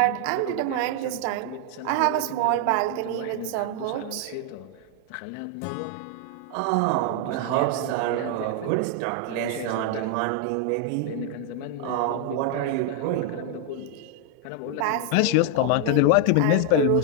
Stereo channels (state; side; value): different; both; correlation 0.00